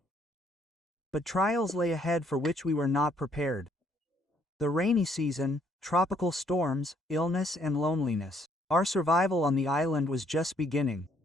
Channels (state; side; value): normal; both; correlation 0.67